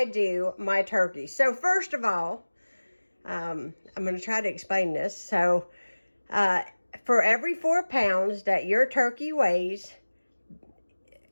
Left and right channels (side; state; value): both; inverted; correlation -1.00